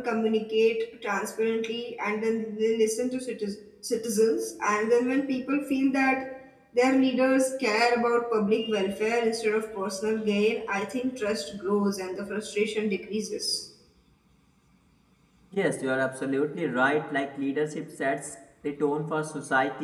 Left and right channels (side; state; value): both; identical; correlation 1.00